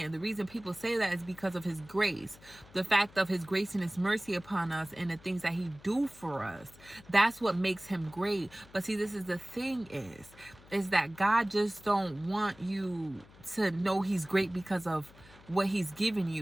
the reason people say that is because of his grace. The fact of his grace and his mercy upon us and the things that he do for us. That's what makes him great. But see, this is the thing is that God just don't want you to know he's great because of what he's given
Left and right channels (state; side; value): noise; left; hum, 23 dB below the sound